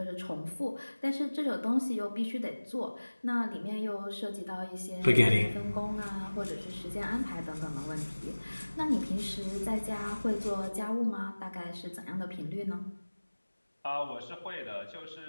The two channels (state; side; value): inverted; both; correlation -1.00